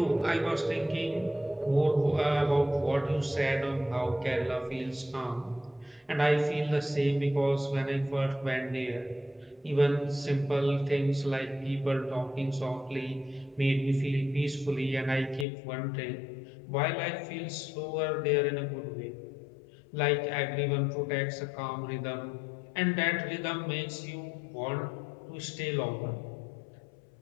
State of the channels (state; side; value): drops out; right; at 15.5 s